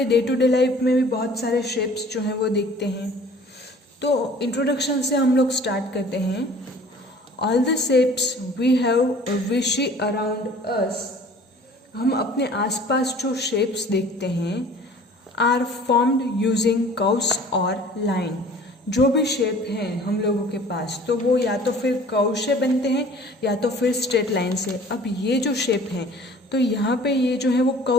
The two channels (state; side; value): normal; both; correlation 0.48